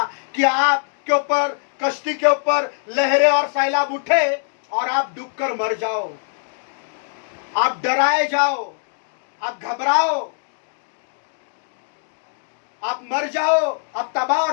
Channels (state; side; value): silent; right; digital silence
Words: कि आपके ऊपर, कश्ती के ऊपर लहरें और सैलाब उठे और आप डूबकर मर जाओ, आप डराए जाओ, आप घबराओ, आप मर जाओ, आप तबाह